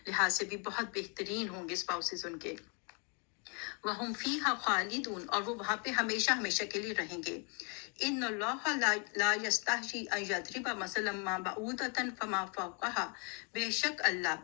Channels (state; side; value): quieter; right; 35.8 dB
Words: سے بھی بہت بہترین ہوں گے اسپاؤسز ان کے. وَهُمْ فِيهَا خَالِدُونَ, اور وہ وہاں پہ ہمیشہ ہمیشہ کے لیے رہیں گے. ان اللہ لا یستحیی ان یضرب مثلا ما بعوضۃ فما فوقها, بے شک اللہ